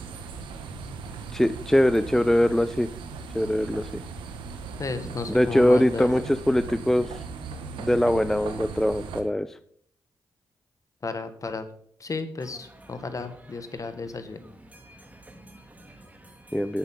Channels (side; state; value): both; normal; correlation 0.96